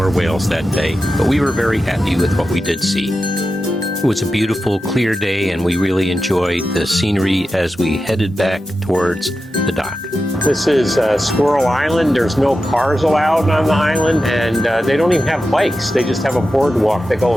whales that day. But we were very happy with what we did see. It was a beautiful, clear day, and we really enjoyed the scenery as we headed back towards the dock. This is Squirrel Island. There's no cars allowed on the island, and they don't even have bikes. They just have a boardwalk that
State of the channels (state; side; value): normal; both; correlation 0.91